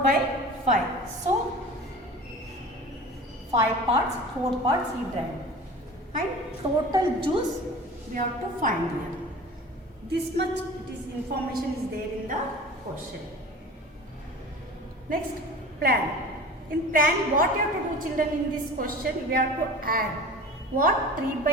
So 5 parts, 4 parts he drank. And total juice we have to find here. This much information is there in the question. Next, plan. In plan, what you have to do children in this question? We have to add what?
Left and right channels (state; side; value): normal; both; correlation 0.38